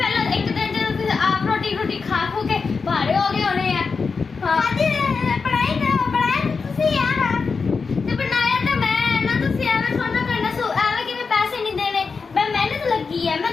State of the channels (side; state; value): right; quieter; 4.9 dB